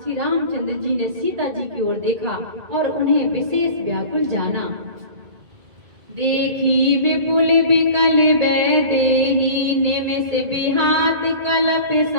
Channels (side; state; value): left; late; 2.1 ms